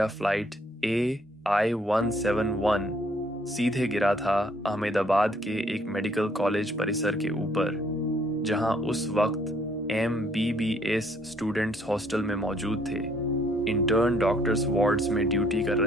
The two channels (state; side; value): normal; both; correlation 0.65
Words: फ्लाइट AI-171 सीधे गिरा था अहमदाबाद के एक मेडिकल कॉलेज परिसर के ऊपर, जहां उस वक्त MBBS स्टूडेंट्स हॉस्टल में मौजूद थे। इंटर्न डॉक्टर्स वार्ड्स में ड्यूटी कर